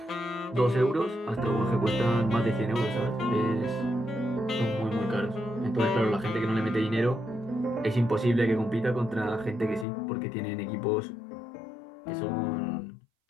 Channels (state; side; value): drops out; right; at 9.9 s